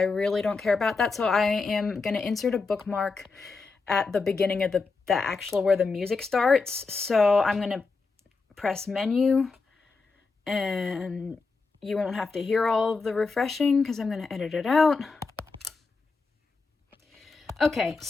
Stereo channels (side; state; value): right; quieter; 4.3 dB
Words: really don't care about that, so I am going to insert a bookmark at the beginning of the actual where the music starts. So I'm going to press menu, and you won't have to hear all of the refreshing because I'm going to edit it out. Okay,